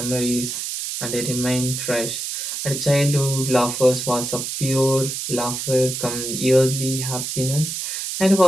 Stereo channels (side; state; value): right; noise; hiss, 4 dB below the sound